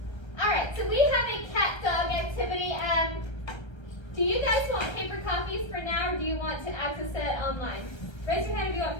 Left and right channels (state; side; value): late; right; 1.3 ms